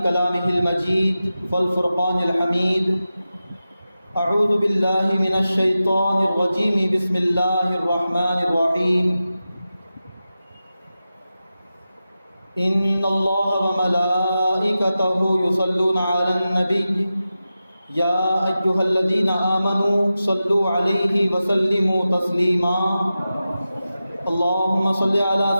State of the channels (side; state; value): both; inverted; correlation -0.93